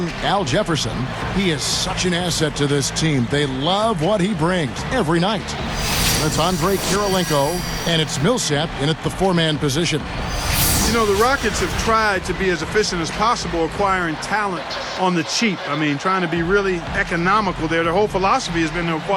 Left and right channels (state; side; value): identical; both; correlation 1.00